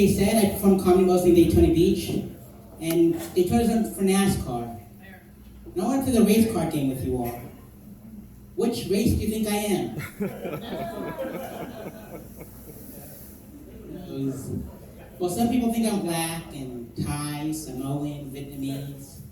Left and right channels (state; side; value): identical; both; correlation 1.00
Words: said, I perform comedy mostly in Daytona Beach, and Daytona's for NASCAR. And I want to play the race car game with you all. Which race do you think I am? Well, some people think I'm black and Thai, Samoan, Vietnamese.